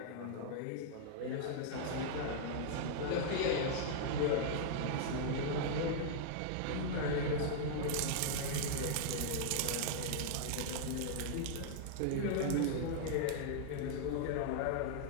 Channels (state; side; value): different; both; correlation -0.01